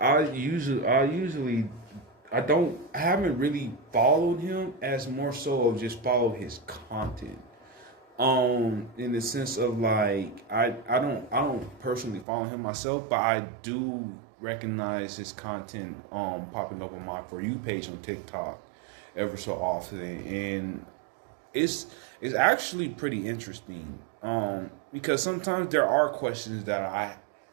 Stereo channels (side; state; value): left; drops out; at 12.2 s